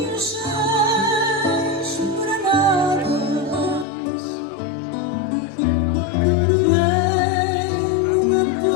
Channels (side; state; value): right; drops out; at 3.9 s